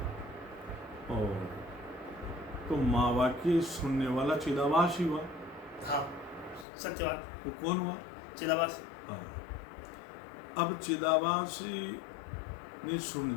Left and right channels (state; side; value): drops out; right; at 6.7 s